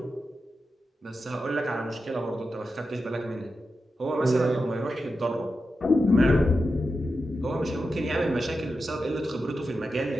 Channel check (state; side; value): normal; both; correlation 0.90